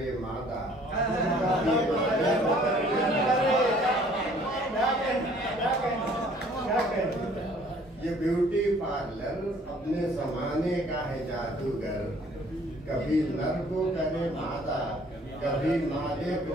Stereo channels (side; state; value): both; normal; correlation 0.57